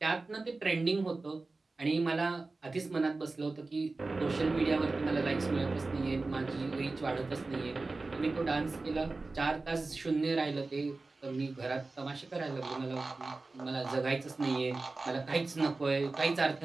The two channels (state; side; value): quieter; left; 3.5 dB